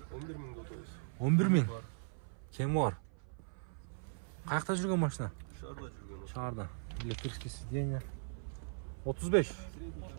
11.000. Кем бар? Қаяқта жүрген машина? Шарда. Электрический сиденье. 35.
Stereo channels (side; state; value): left; silent; 52 dB below the other